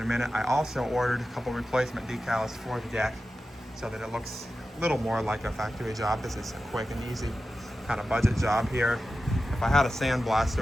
a minute. I also ordered a couple replacement decals for the deck so that it looks a little more like a factory job. This is a quick and easy kind of budget job here. If I had a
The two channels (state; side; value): normal; both; correlation 0.93